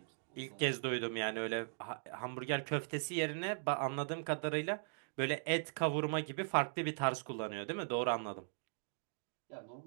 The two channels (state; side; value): silent; left; digital silence